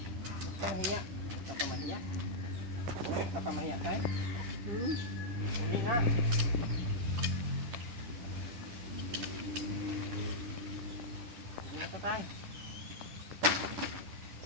Papahiya. Papamahiya. Uy, papamahiya tayo. Hmm? Hindi na. Hindi na tayo.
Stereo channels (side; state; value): left; late; 10 ms